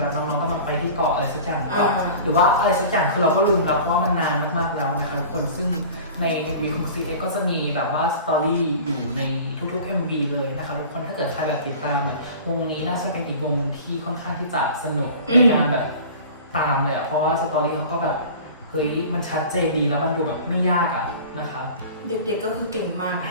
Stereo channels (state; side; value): inverted; both; correlation -0.40